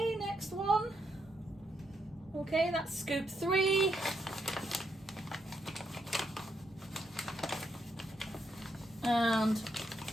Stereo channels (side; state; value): both; normal; correlation 0.79